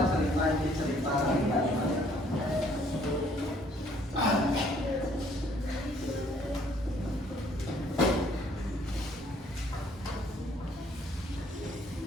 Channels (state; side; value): normal; both; correlation 0.62